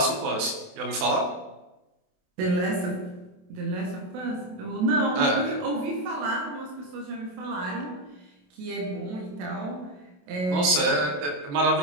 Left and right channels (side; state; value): left; late; 28 ms